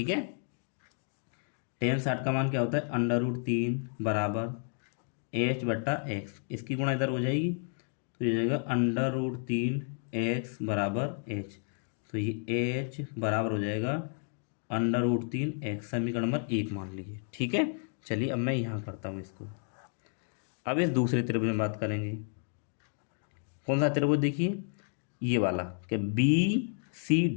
है, टेन 60 का मान क्या होता है √3 बराबर एच बट्टा एक्स। इसकी गुणा इधर हो जाएगी तो ये जाएगा √3 एक्स बराबर एच। तो ये एच बराबर हो जाएगा √3 एक्स, समीकरण नंबर 1 मान लीजिए। ठीक है, चलिए अब मैं यहाँ करता हूँ इसको। अब इस दूसरे त्रिभुज में बात करेंगे। कौन सा त्रिभुज, देखिए ये वाला, क्या बी सी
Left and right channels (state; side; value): silent; right; 57 dB below the other